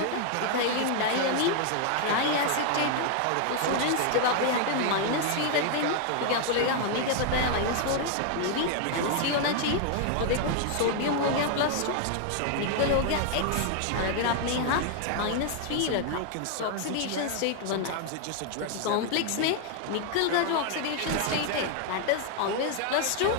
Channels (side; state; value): both; different; correlation 0.00